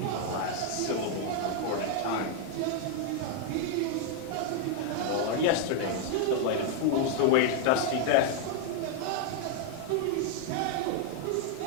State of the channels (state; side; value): different; both; correlation 0.00